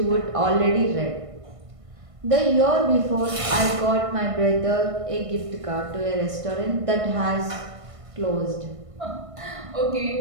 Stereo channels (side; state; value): left; late; 1.5 ms